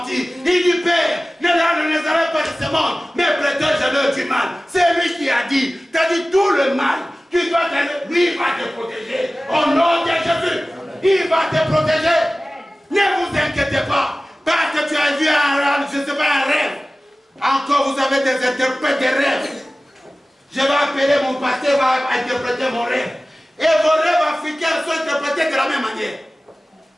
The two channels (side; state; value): both; normal; correlation 0.97